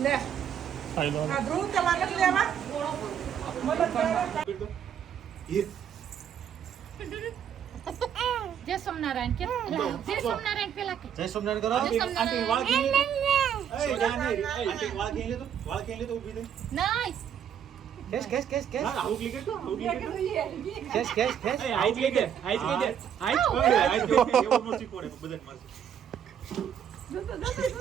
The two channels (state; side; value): quieter; left; 8.8 dB